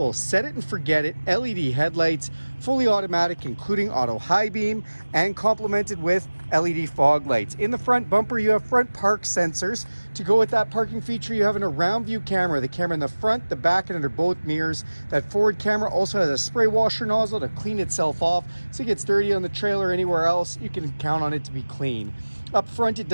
set it and forget it LED headlights, fully automatic, including auto high beam, and complemented with LED fog lights. In the front bumper, you have front park sensors. To go with that parking feature, you have an around view camera, the camera in the front, the back, and under both mirrors. That forward camera also has a spray washer nozzle to clean itself off, so it gets dirty on the trailer or anywhere else, you can count on it to be clean. Up front, it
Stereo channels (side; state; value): both; inverted; correlation -1.00